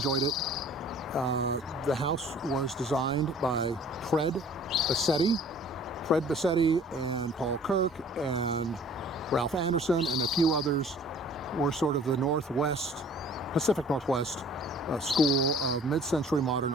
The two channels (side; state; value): both; normal; correlation 0.51